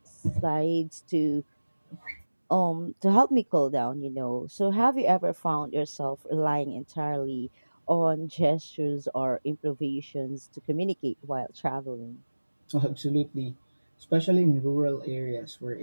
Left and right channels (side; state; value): both; inverted; correlation -1.00